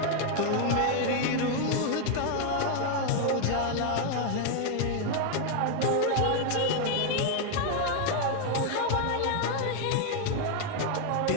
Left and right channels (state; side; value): different; both; correlation 0.00